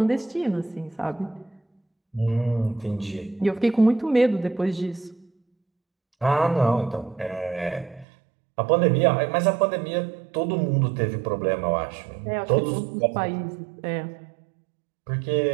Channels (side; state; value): left; drops out; at 8.1 s